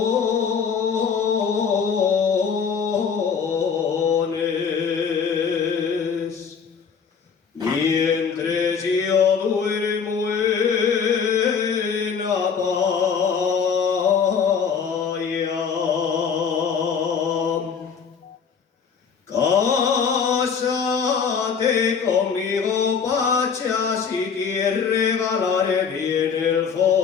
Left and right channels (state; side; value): quieter; right; 6.4 dB